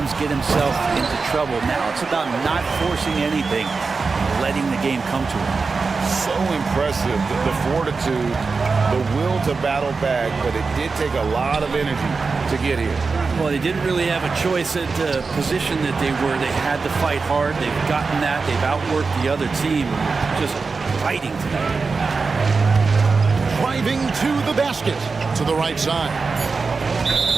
get himself into trouble. Now it's about not forcing anything, letting the game come to him. So impressive, the fortitude, the will to battle back, but it did take a lot of energy to get here. Well, they didn't really have a choice at the position that they were. They had to fight hard. They've gotten that. They've outworked the other team. Just fighting tonight. Driving to the basket. To the right side.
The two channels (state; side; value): quieter; left; 4.5 dB